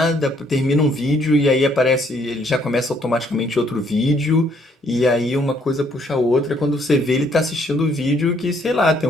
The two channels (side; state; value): both; normal; correlation 0.67